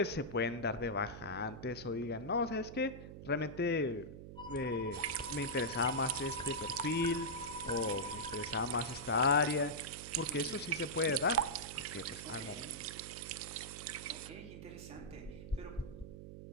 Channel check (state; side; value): noise; right; hum, 12 dB below the sound